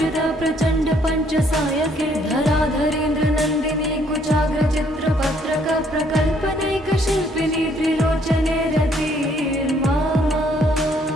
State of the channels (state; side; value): normal; both; correlation 0.66